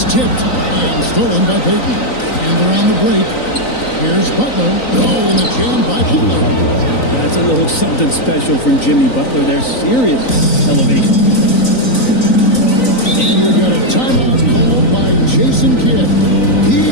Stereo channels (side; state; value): right; late; 3.9 ms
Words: tipped and stolen by Payton. And they're on the break. Here's Butler. Oh, and the jam by Butler. That's a little something special from Jimmy Butler. There's serious elevation. And we've got a timeout called by Jason Kidd. He